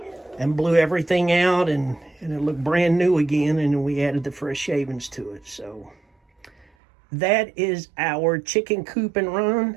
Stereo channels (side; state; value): left; drops out; at 6.7 s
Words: and blew everything out, and it looked brand new again, and we added the fresh shavings to it. So that is our chicken coop and